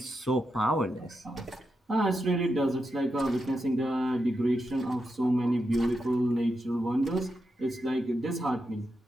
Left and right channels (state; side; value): normal; both; correlation 0.86